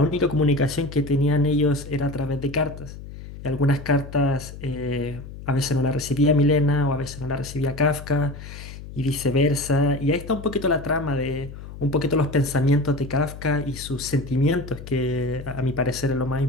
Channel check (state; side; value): noise; left; hum, 13 dB below the sound